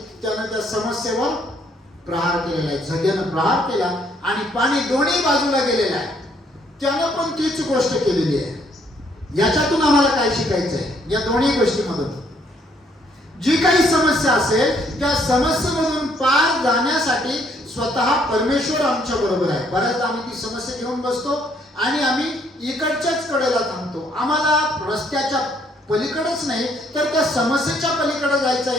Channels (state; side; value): normal; both; correlation 0.68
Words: त्यानं त्या समस्येवर प्रहार केलेला आहे. जग्यानं प्रहार केला आणि पाणी दोन्ही बाजूला गेलेलं आहे. त्यानं पण तीच गोष्ट केलेली आहे. याच्यातून आम्हाला काय शिकायचं आहे? या दोन्ही गोष्टीमधून जी काही समस्या असेल त्या समस्येमधून पार जाण्यासाठी स्वतः परमेश्वर आमच्या बरोबर आहे. बऱ्याचदा आम्ही ती समस्या घेऊन बसतो आणि आम्ही इकडच्याच कडेला थांबतो. आम्हाला रस्त्याच्या पलीकडेच नाही तर त्या समस्येच्या पलीकडे जायचं.